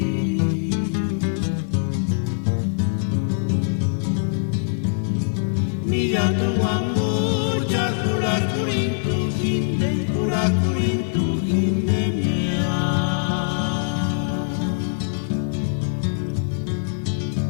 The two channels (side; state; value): right; silent; 63 dB below the other